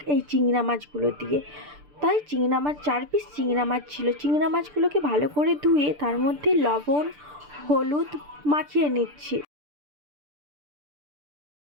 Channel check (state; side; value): late; left; 6.8 ms